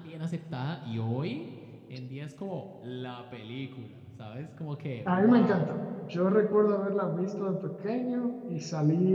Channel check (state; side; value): identical; both; correlation 1.00